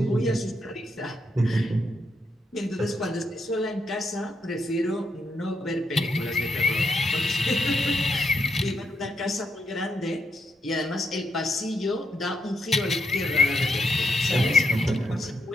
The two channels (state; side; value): normal; both; correlation 0.79